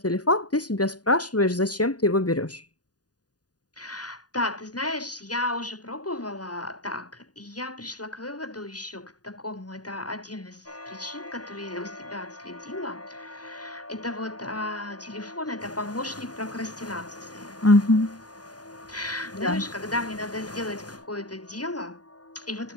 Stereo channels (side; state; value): right; late; 0.68 ms